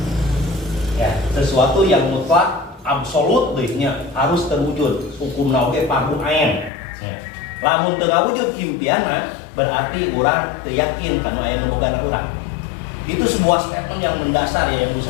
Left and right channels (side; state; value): right; drops out; at 6.7 s